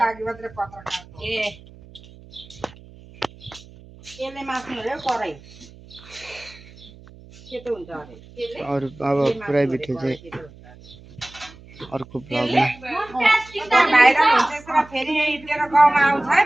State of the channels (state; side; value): noise; right; hum, 21 dB below the sound